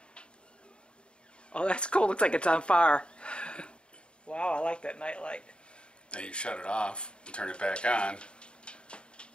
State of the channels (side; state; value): right; late; 0.053 ms